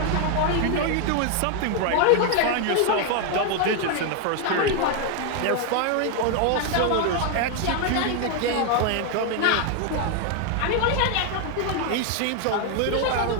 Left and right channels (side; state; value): both; different; correlation 0.01